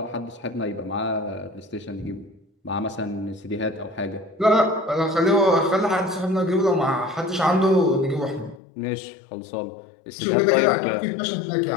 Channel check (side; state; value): right; drops out; at 8.6 s